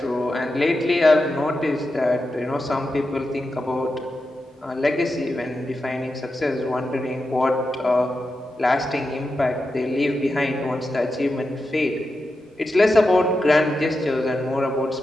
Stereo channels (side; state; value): both; normal; correlation 0.89